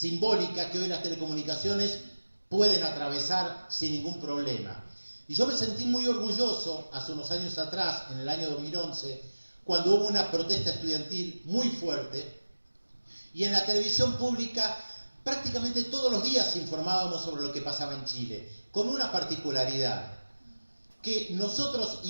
que hoy las telecomunicaciones pueden atravesar sin ningún problema. Y yo me sentí muy orgulloso hace unos años atrás, en el año 2011, cuando hubo una protesta estudiantil muy fuerte, y en la televisión pública prácticamente todos los días informábamos sobre lo que pasaba en Chile, con una particularidad, que nosotros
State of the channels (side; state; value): both; inverted; correlation -1.00